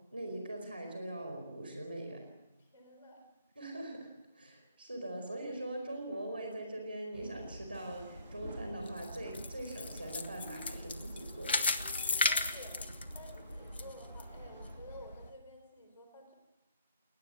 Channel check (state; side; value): inverted; both; correlation -0.61